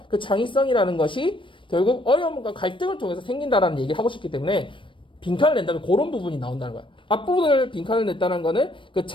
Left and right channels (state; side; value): late; right; 0.25 ms